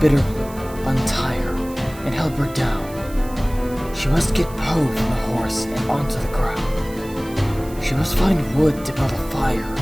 Bitterblue, untie her, and help her down. She must get Poe from the horse and onto the ground. She must find wood to build a fire,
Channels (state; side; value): noise; right; hiss, 19 dB below the sound